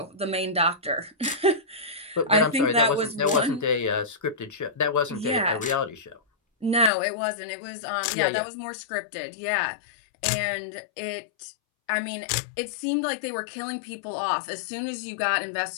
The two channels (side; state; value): right; drops out; at 6.9 s